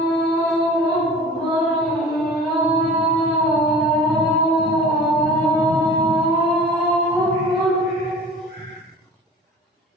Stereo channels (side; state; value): both; normal; correlation 0.41